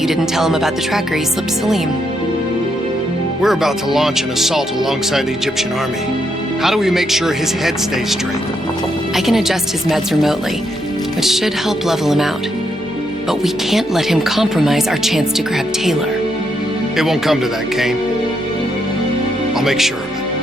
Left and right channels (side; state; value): both; normal; correlation 0.79